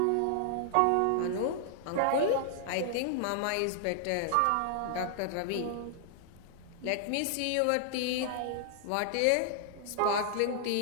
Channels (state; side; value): different; both; correlation -0.01